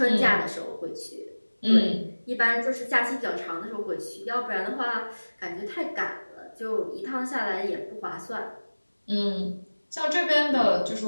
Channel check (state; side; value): inverted; both; correlation -1.00